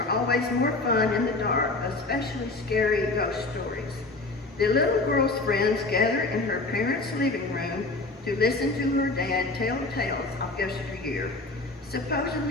always more fun in the dark, especially scary ghost stories. The little girl's friends gather in her parents' living room to listen to her dad tell tales of yesteryear,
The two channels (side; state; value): right; quieter; 3.2 dB